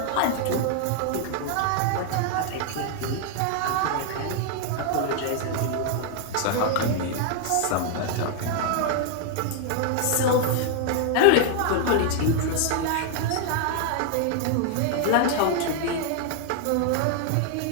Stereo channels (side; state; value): both; different; correlation 0.00